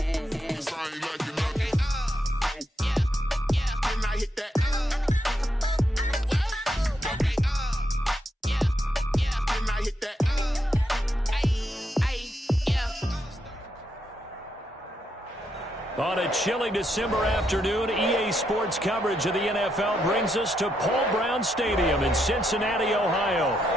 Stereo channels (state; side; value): normal; both; correlation 0.80